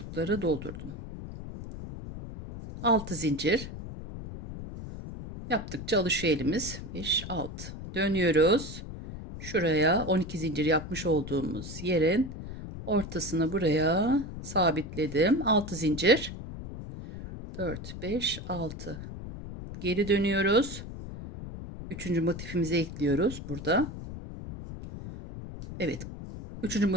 doldurdum. 6 zincir yaptıkça alışıyor elimiz. 5, 6 dönüyoruz. Şuraya 12 zincir yapmış olduğumuz yerin ortasını buraya sabitledim. 6 zincir. 4, 5, 6. Geri dönüyoruz. Üçüncü motifimizi ekliyoruz burada. Evet. Üçüncü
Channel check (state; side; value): noise; left; rumble, 10 dB below the sound